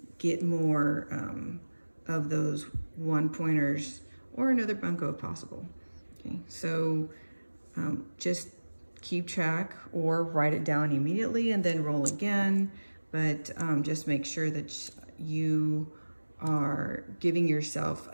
get more of those one-pointers or another bunco if possible. Okay, so just keep track or write it down immediately and then roll again, but just make sure that you are giving yourself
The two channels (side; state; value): both; inverted; correlation -1.00